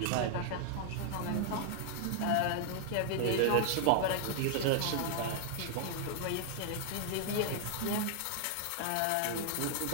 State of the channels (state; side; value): different; both; correlation -0.01